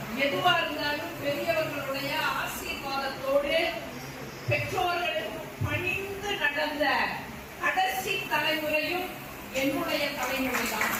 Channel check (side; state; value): both; identical; correlation 1.00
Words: எதுவா இருந்தாலும் பெரியவர்களுடைய ஆசீர்வாதத்தோடு பெற்றோர்களுக்கு பணிந்து நடந்த கடைசி தலைமுறையும் என்னுடைய தலைமுறை தான்.